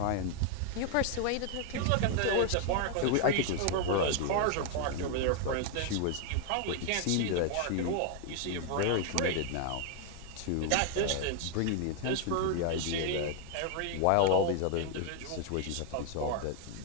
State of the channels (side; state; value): both; different; correlation 0.00